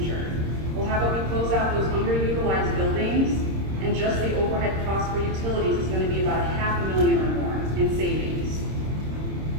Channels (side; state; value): left; late; 26 ms